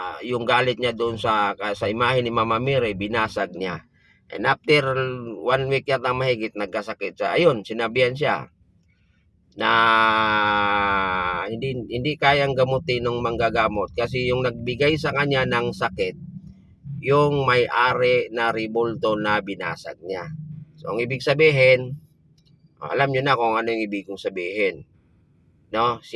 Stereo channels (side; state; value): both; identical; correlation 1.00